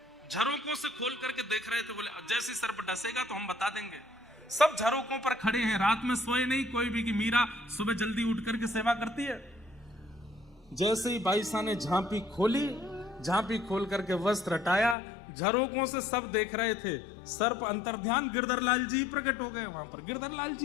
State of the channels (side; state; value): right; drops out; at 15.0 s